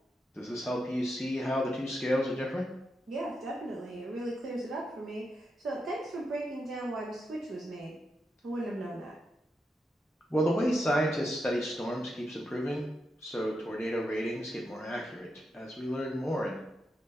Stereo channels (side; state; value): both; normal; correlation 0.85